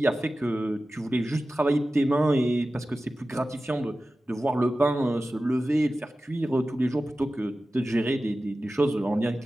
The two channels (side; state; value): both; normal; correlation 0.95